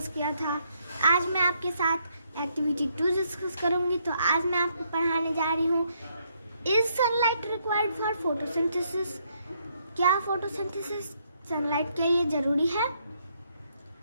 किया था। आज मैं आपके साथ एक्टिविटी 2 डिस्कस करूँगी। तो आज मैं आपको पढ़ाने जा रही हूँ, is sunlight required for photosynthesis? क्या फोटोसिंथेसिस सनलाइट के लिए जरूरी है?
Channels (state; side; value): inverted; both; correlation -0.73